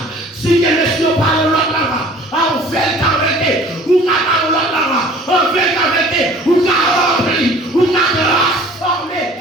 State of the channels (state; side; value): normal; both; correlation 0.49